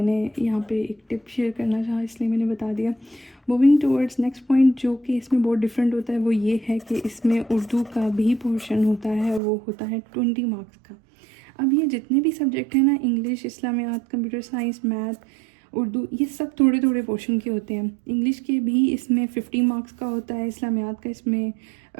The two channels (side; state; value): left; drops out; at 9.4 s